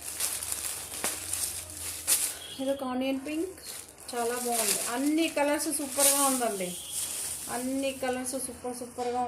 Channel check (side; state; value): both; identical; correlation 1.00